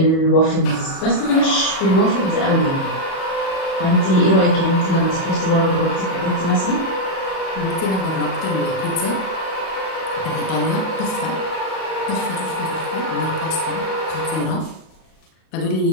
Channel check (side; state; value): right; late; 37 ms